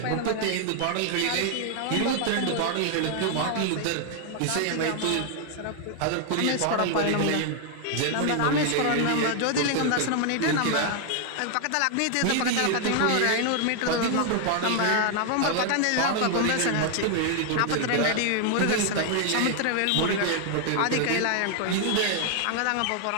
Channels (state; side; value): different; both; correlation 0.00